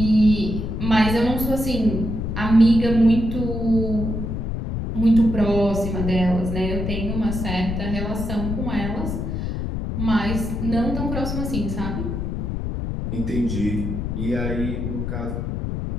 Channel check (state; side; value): noise; left; rumble, 3 dB below the sound